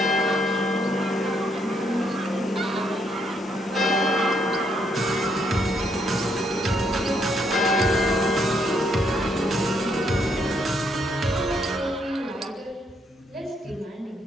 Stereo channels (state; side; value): normal; both; correlation 0.73